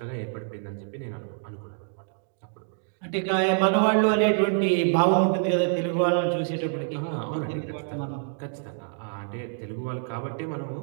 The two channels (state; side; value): silent; left; digital silence